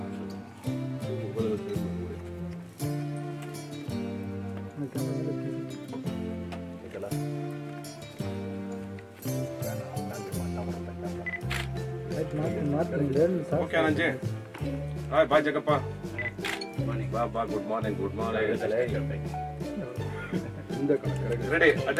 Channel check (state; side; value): identical; both; correlation 1.00